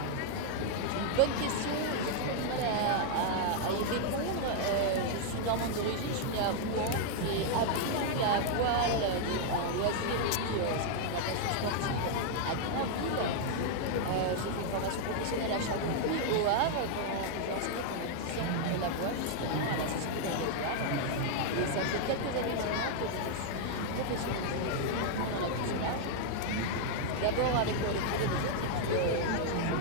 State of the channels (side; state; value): both; different; correlation 0.00